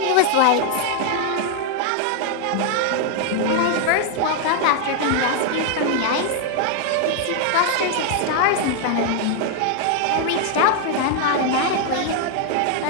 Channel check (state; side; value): different; both; correlation 0.00